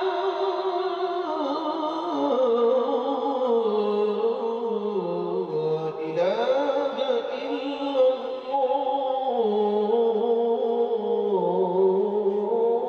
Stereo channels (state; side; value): identical; both; correlation 1.00